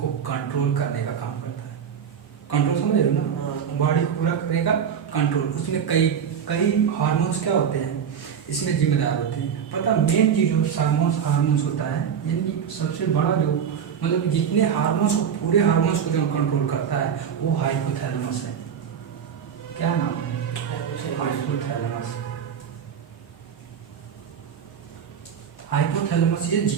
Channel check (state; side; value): quieter; left; 7.8 dB